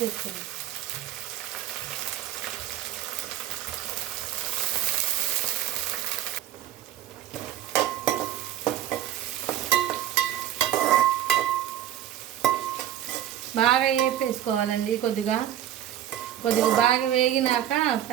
బాగా వేపేసుకోవాలండి. కొద్దిగా బాగా వేగినాక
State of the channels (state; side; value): quieter; left; 11.9 dB